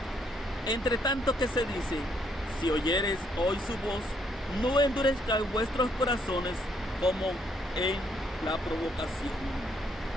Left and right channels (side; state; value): both; normal; correlation 0.71